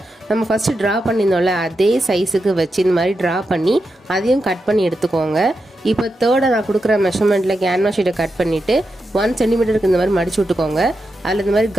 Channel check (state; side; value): normal; both; correlation 0.88